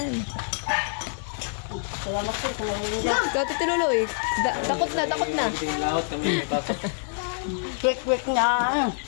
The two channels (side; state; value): right; silent; 61 dB below the other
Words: Salamat po sa ngayon dyan. Kati Tiluloy, takot na, takot na. Tingin lahat kami may pasok. Quick na.